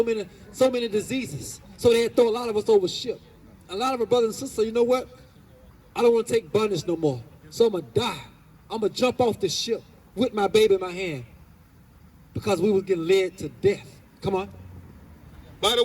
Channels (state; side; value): identical; both; correlation 1.00